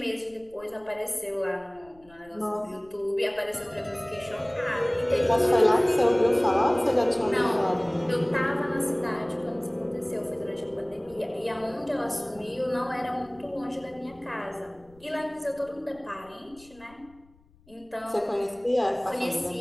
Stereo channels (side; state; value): left; noise; rumble, 28 dB below the sound